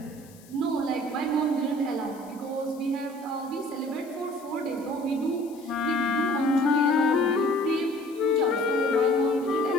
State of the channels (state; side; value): noise; left; hiss, 25 dB below the sound